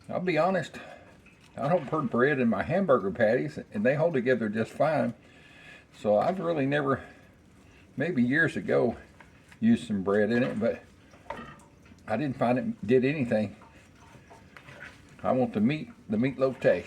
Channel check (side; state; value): both; identical; correlation 1.00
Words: I'll be honest, I don't put bread in my hamburger patties, and they hold together just fine. So I've really never, maybe years ago, used some bread in it, but I didn't find it did anything. I want the meatloaf